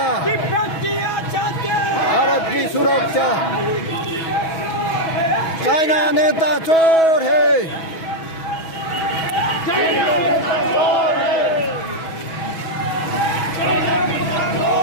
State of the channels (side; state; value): right; late; 6.2 ms